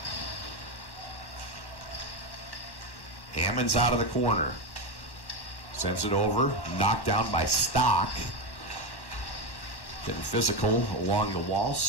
Hammond's out of the corner. Sends it over, knocked down by Stock. Getting physical along the wall.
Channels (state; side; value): late; right; 1.1 ms